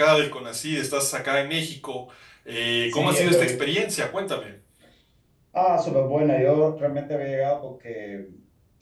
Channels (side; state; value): both; identical; correlation 1.00